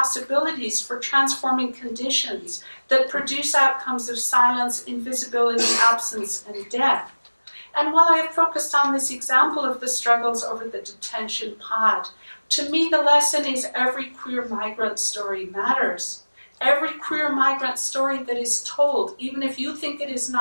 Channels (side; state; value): both; inverted; correlation -1.00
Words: for transforming conditions that produce outcomes of silence, invisibility, absence, and death. And while I have focused on this example of the struggles over the detention pod, to me the lesson is every queer migrant story matters. Every queer migrant story that is told, even if you think it is